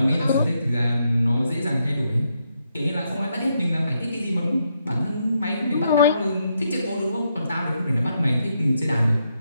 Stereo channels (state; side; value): inverted; both; correlation -0.79